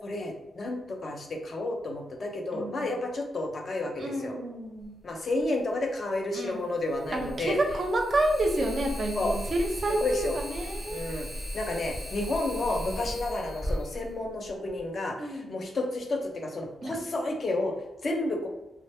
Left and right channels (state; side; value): normal; both; correlation 0.84